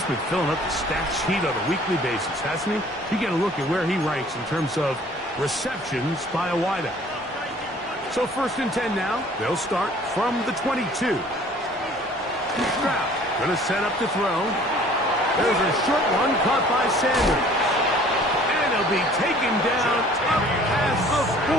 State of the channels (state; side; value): normal; both; correlation 0.53